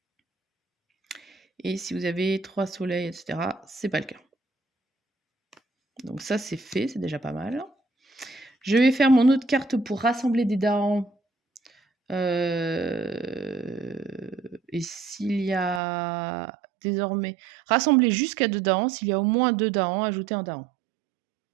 Et si vous avez 3 soleils, etc., c'est pas le cas. Donc ça, c'est fait, c'est déjà pas mal. Je vais faire mon autre carte pour rassembler des Dahans. Et s'il y a désormais... Rassembler jusqu'à 2 Dahans. S'il y a au moins 2 Dahans, ajouter un Dahan.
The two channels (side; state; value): left; drops out; at 15.8 s